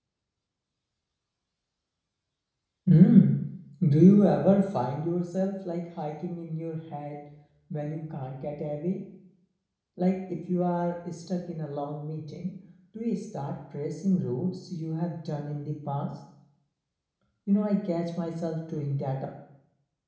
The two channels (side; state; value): both; identical; correlation 1.00